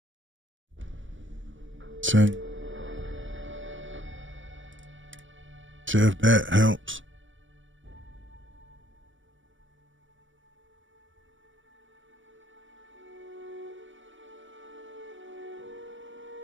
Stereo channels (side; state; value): left; late; 0.56 ms